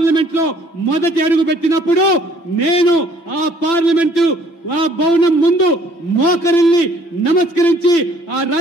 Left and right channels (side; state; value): right; late; 5.9 ms